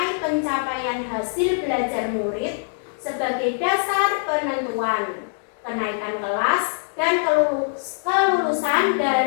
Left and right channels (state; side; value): silent; right; digital silence